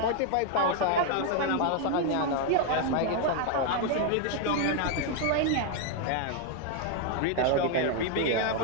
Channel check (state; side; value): different; both; correlation 0.01